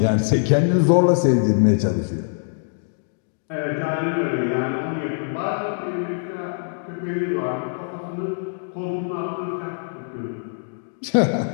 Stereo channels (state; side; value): silent; right; digital silence